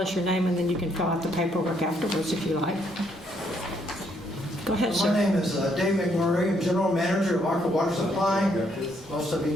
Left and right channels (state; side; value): normal; both; correlation 0.71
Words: us your name, and then you can fill out the paperwork afterwards if you like. Go ahead, sir. My name is Dave McMurray. I'm General Manager of Arca Water Supply. Most of